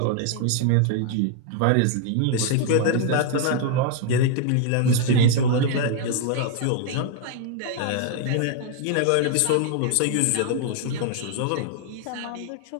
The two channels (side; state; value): both; different; correlation 0.00